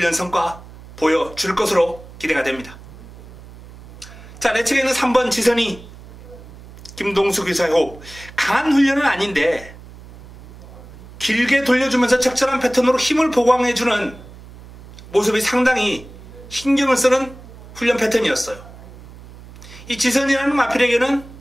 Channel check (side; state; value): right; noise; hum, 18 dB below the sound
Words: 성과 보여줄 것으로 기대가 됩니다. 자, 내 측에는 3번 지선이 김동수 기사의 호흡. 강한 훈련은 아닌데 길게 돌려주면서 적절한 패턴으로 힘을 보강해주는 모습이 상당히 신경을 쓰는 훈련 패턴이었어요. 이 지선이라는 마필에게는